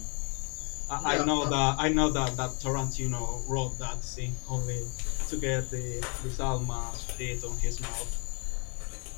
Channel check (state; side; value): quieter; right; 36.1 dB